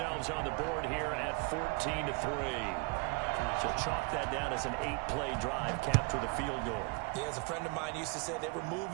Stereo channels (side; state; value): left; quieter; 29.9 dB